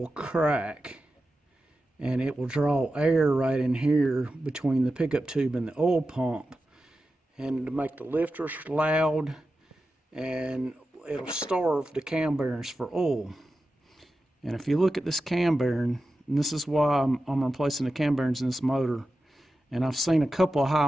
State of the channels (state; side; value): normal; both; correlation 0.92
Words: crack, and it will draw air right in here between the pickup tube and the oil pump, and to make the lifters loud, and it'll starve the cam bearings for oil. And if you look at this cam bearing, and this is why I'm replacing the cam bearings in this motor, and I've seen a couple of high